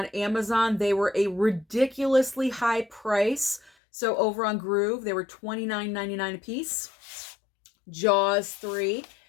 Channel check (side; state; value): right; drops out; at 3.7 s